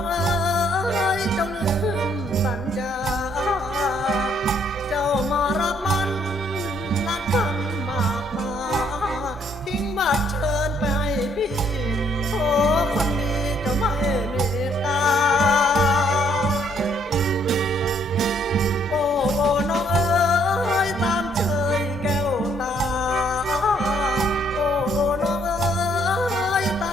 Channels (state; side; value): normal; both; correlation 0.67